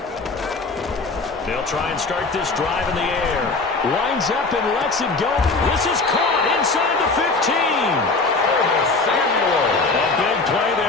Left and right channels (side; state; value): right; quieter; 3.8 dB